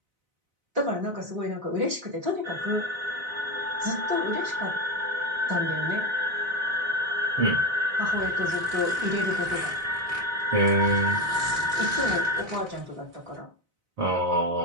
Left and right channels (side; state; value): left; late; 4.0 ms